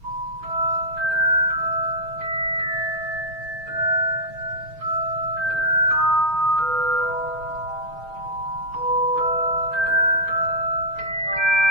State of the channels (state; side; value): late; left; 6.4 ms